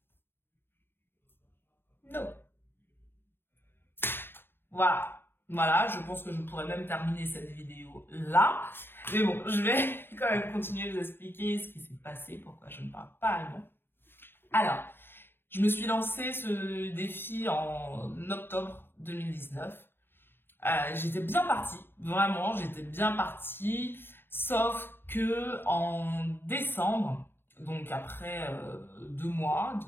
Non. Voilà, je pense que je pourrais même terminer cette vidéo là. Mais bon, je vais quand même continuer de vous expliquer ce qui s'est passé, pourquoi je ne parle pas allemand. Alors, je me suis lancé ce défi en octobre 2019. J'étais bien partie, vraiment, j'étais bien partie. Sauf que en décembre, donc après 2 mois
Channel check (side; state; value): right; late; 0.10 ms